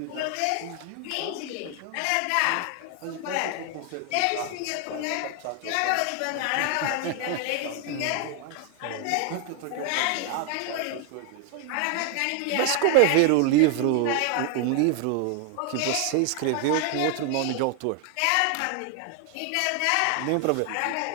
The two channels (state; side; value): different; both; correlation 0.00